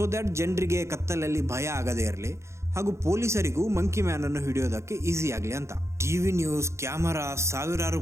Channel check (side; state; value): left; late; 0.14 ms